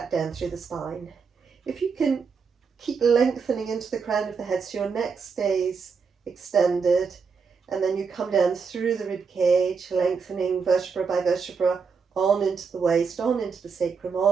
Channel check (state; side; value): quieter; left; 5.5 dB